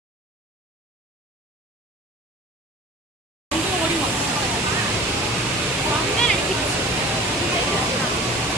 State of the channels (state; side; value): normal; both; correlation 0.41